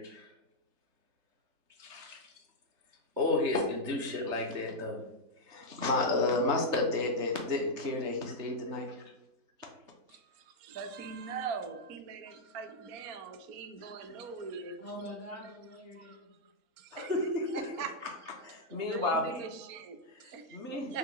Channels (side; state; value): left; late; 3.4 ms